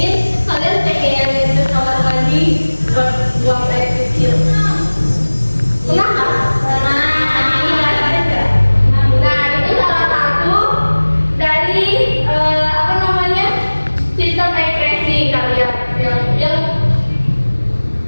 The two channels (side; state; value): both; inverted; correlation -1.00